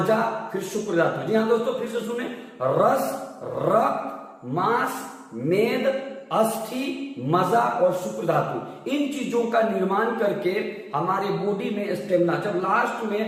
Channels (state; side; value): identical; both; correlation 1.00